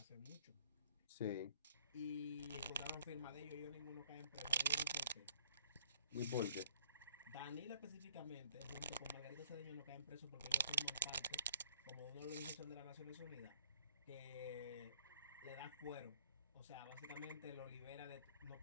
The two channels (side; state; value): both; inverted; correlation -0.59